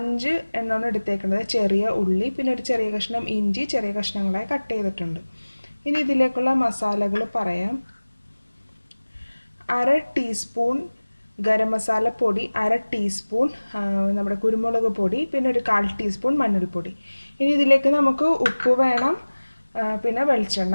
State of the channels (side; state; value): both; inverted; correlation -1.00